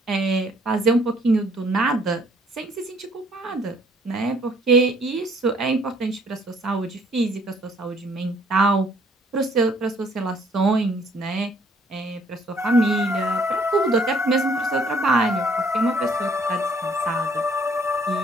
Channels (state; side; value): normal; both; correlation 0.62